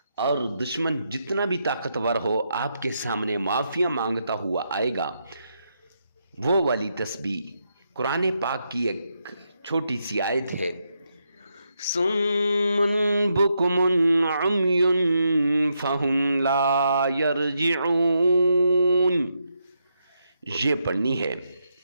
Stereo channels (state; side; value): inverted; both; correlation -0.81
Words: اور دشمن جتنا بھی طاقتور ہو آپ کے سامنے معافیاں مانگتا ہوا آئے گا، وہ والی تسبیح قرآن پاک کی ایک چھوٹی سی آیت ہے، صم بکم عمی فہم لا یرجعون، یہ پڑھنی ہے،